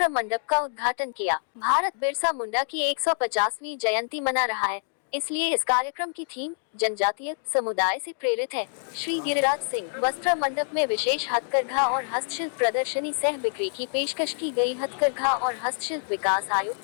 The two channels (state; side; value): silent; right; digital silence